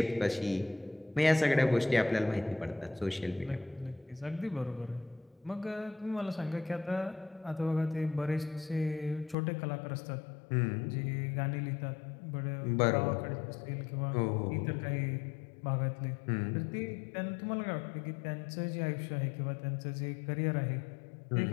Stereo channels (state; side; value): drops out; right; at 9.3 s